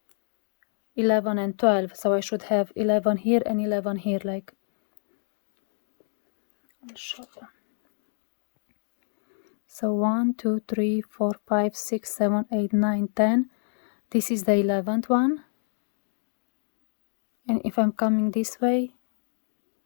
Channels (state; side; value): silent; right; digital silence